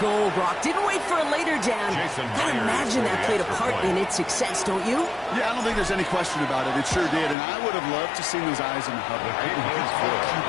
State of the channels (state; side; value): drops out; right; at 7.4 s